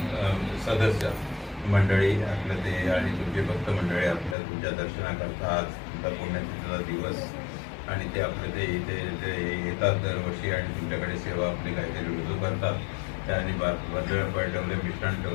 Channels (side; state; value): right; drops out; at 4.4 s